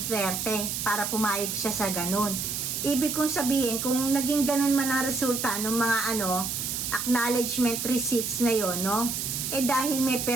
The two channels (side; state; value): right; noise; hiss, 3 dB below the sound